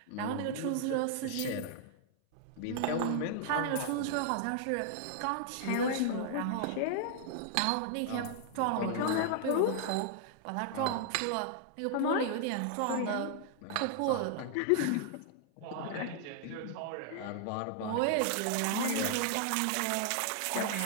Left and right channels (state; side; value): different; both; correlation -0.01